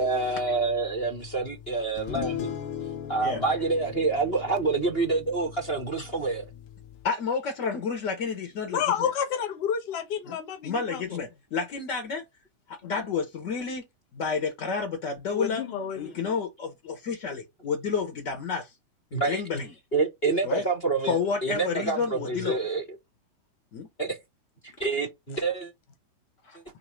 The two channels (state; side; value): late; right; 2.8 ms